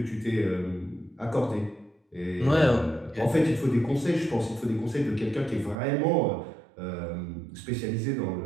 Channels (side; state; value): left; drops out; at 5.8 s